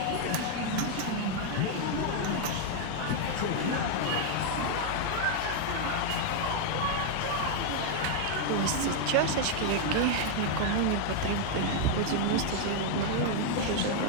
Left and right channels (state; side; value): different; both; correlation 0.00